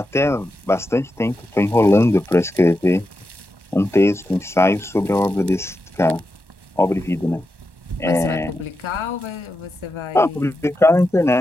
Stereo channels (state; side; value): normal; both; correlation 0.88